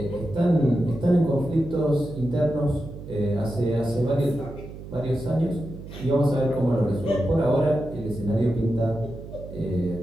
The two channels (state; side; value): noise; right; hum, 13 dB below the sound